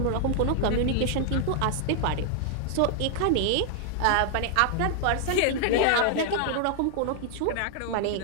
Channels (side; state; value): both; different; correlation 0.00